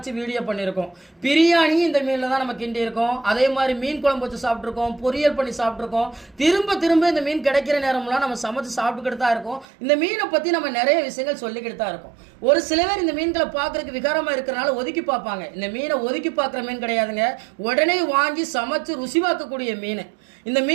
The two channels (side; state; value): left; drops out; at 9.7 s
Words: வீடியோ பண்ணியிருக்கோம். பிரியாணி இந்த மீனில் தான் நம்ம கிண்டி இருக்கோம். அதே மாதிரி மீன் குழம்பு வச்சு சாப்பிட்ருக்கோம், பொரியல் பண்ணி சாப்பிட்ருக்கோம். திரும்ப திரும்ப இந்த மீன் கிடைக்கிற நேரம்லாம் நம்ம சமைச்சு சாப்பிட்டுக்கிட்டு தான் இருக்கோம். இந்த மீனை பற்றி நம்ம நிறைய விஷயங்கள் சொல்லிக்கிட்டு தான் இருக்கோம். ஒரு சில பேர் இந்த மீன்களை பார்க்கறதுக்கு விகாரமா இருக்கிறனால ஒதுக்கி பார்ப்பாங்க. இந்த மீனை ஒதுக்கி பார்க்குற மீன் கிடையாதுங்க. உடனே வாங்கி சமைச்சு ருசி பார்க்கக்கூடிய மீன். இந்த